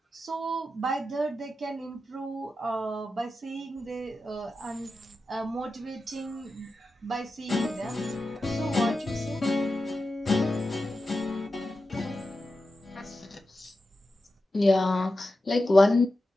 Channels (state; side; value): normal; both; correlation 0.91